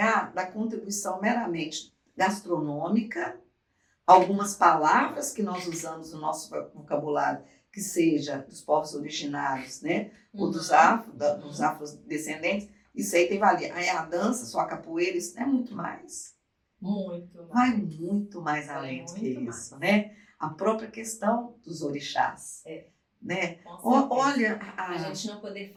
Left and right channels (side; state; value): both; identical; correlation 1.00